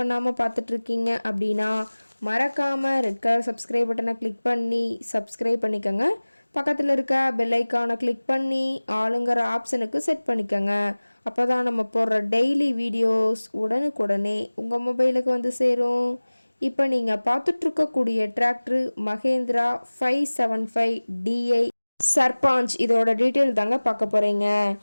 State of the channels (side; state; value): both; inverted; correlation -1.00